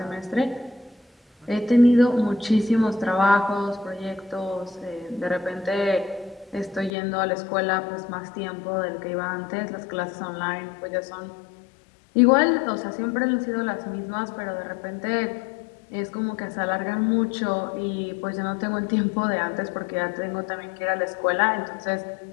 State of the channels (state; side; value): drops out; right; at 6.9 s